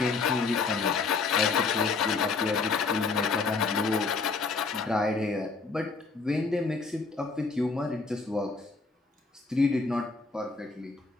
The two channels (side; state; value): right; quieter; 4.3 dB